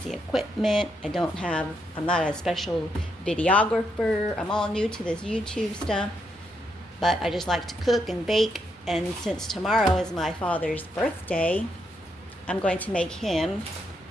equipment. I'm not a special videographer. I'm all new to this YouTube stuff, but I just like to cook and bake. And since tomorrow is my father's birthday, I'm going to make him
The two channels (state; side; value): normal; both; correlation 0.79